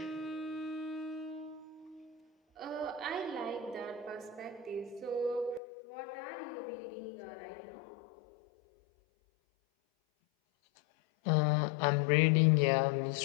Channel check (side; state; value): right; drops out; at 5.6 s